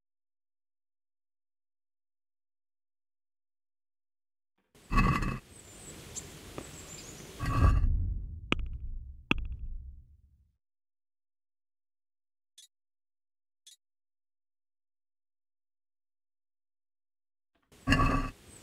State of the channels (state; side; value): identical; both; correlation 1.00